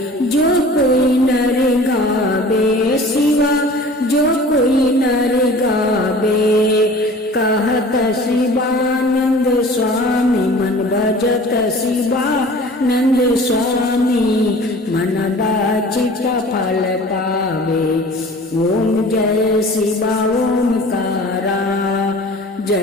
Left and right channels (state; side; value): normal; both; correlation 0.44